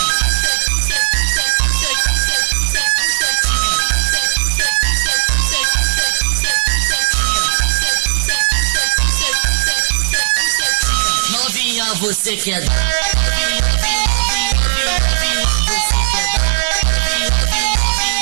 Novinha, você quer dar?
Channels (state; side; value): silent; left; digital silence